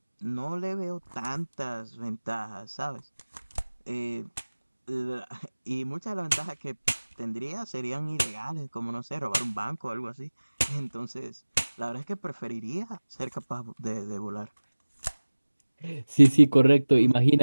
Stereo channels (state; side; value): inverted; both; correlation -1.00